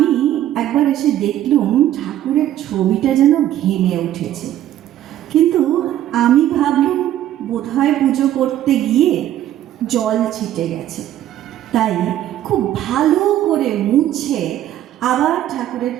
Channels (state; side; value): quieter; left; 12.4 dB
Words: একবার এসে দেখলুম ঠাকুরের ছবিটা যেন ঘেমে উঠেছে, কিন্তু আমি ভাবলুম বোধহয় পুজো করতে গিয়ে জল ছিটে গেছে, তাই খুব ভালো করে মুছে আবার ঠাকুরের